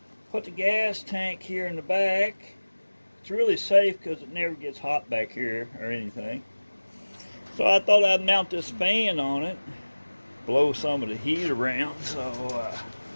Put the gas tank here in the back. It's really safe because it never gets hot back here or anything. So I thought I'd mount this fan on it, blow some of the heat around. So,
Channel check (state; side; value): inverted; both; correlation -1.00